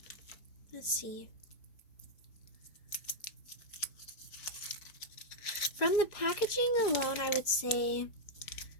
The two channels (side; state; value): right; late; 4.9 ms